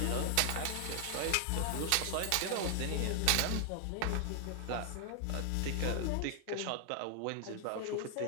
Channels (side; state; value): both; different; correlation 0.00